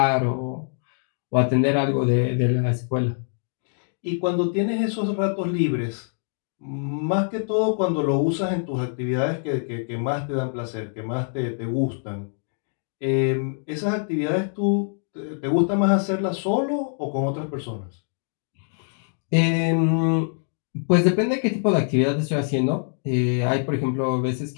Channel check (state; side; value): silent; right; 62 dB below the other